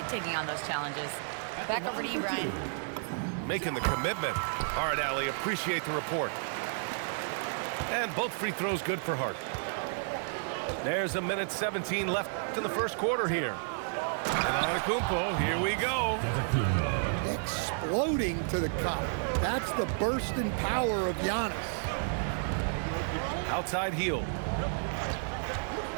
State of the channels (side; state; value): left; silent; digital silence